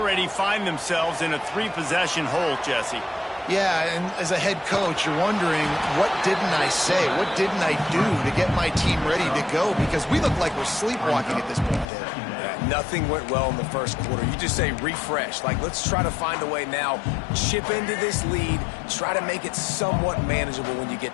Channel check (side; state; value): right; drops out; at 11.9 s